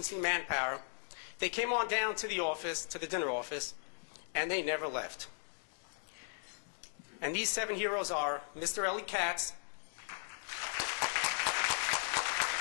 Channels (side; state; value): right; silent; 53 dB below the other